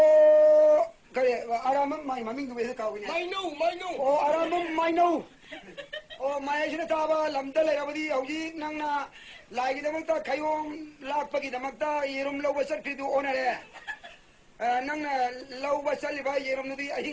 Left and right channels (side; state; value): both; identical; correlation 1.00